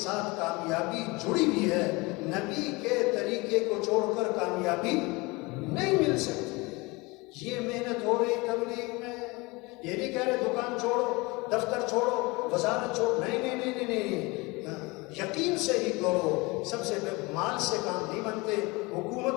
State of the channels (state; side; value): quieter; right; 24.8 dB